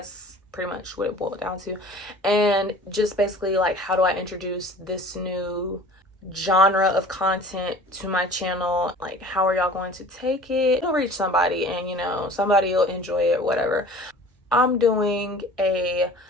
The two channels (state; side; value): normal; both; correlation 0.45